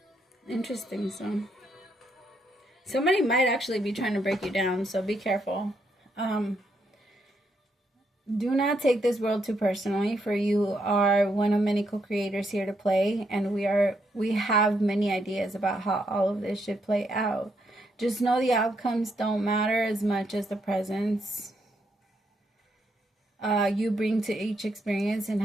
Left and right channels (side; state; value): both; normal; correlation 0.77